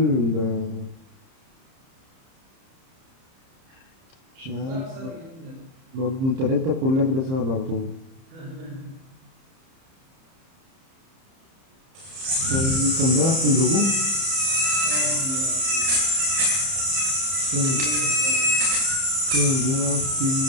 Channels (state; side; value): late; left; 30 ms